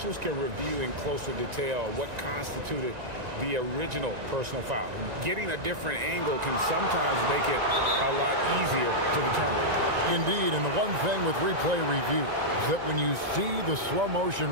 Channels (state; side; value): late; left; 1.9 ms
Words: can review in closer detail what constituted the original personal foul. Getting a different angle can sometimes make it a lot easier to determine. Indeed, and the one thing with replay review is that when you see the slow motion